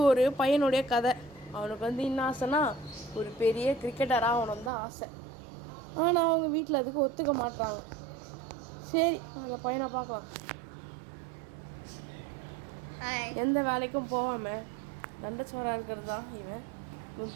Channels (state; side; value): drops out; left; at 4.7 s